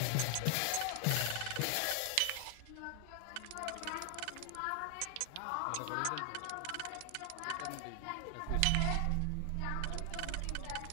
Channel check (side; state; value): both; different; correlation 0.00